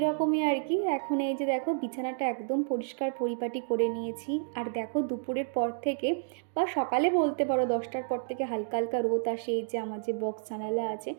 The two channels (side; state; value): left; silent; digital silence